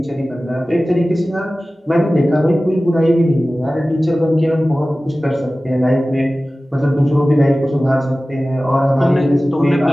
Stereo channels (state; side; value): normal; both; correlation 0.96